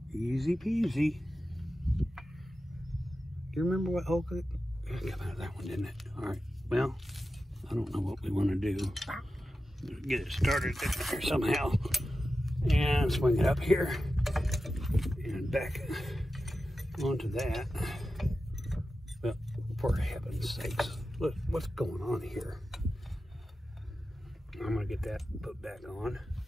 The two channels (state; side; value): normal; both; correlation 0.92